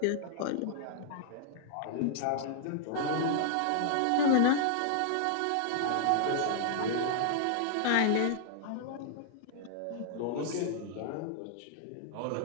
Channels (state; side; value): different; both; correlation -0.01